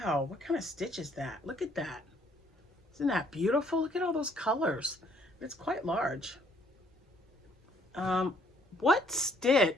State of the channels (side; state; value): both; normal; correlation 0.64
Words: What kind of stitch is that? Look at that. Isn't that beautiful? Look at all those colors. It's quite large. What